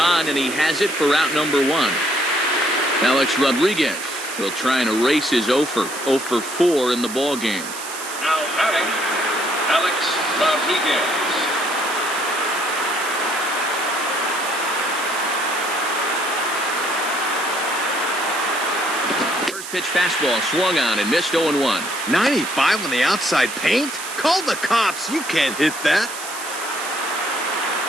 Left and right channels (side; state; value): right; noise; hiss, 10 dB below the sound